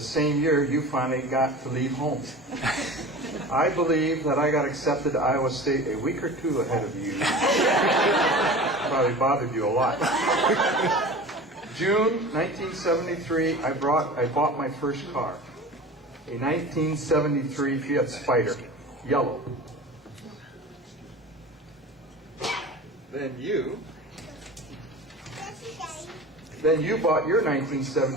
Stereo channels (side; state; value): both; normal; correlation 0.36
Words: year, you finally got to leave home. I believe that I got accepted to Iowa State a week or two ahead of you. Probably bothered you a lot. June 1973, I bought my first car. A 1973 Fiat Spider, yellow. Then you bought your